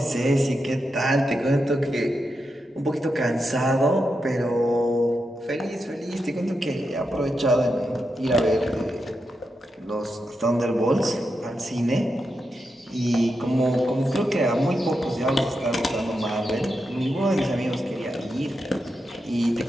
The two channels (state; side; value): normal; both; correlation 0.87